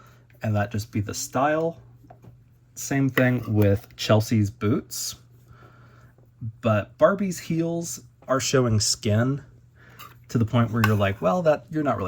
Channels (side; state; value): both; identical; correlation 1.00